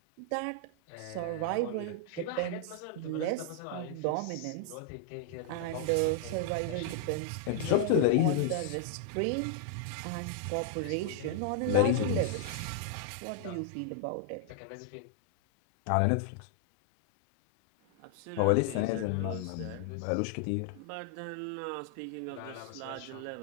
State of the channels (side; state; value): both; different; correlation -0.01